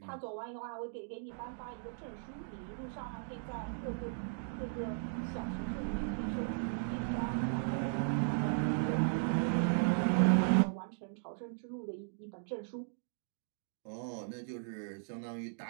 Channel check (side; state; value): left; silent; digital silence